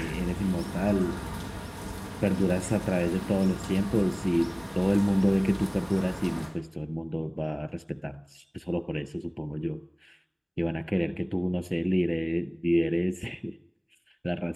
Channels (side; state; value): both; identical; correlation 1.00